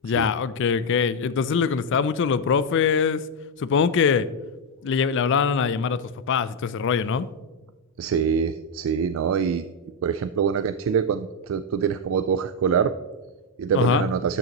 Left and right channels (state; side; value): normal; both; correlation 0.01